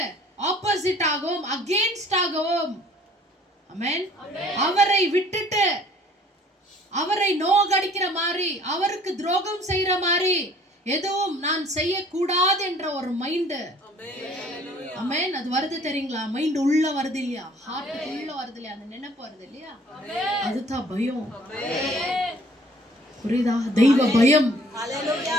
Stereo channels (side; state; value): both; normal; correlation 0.55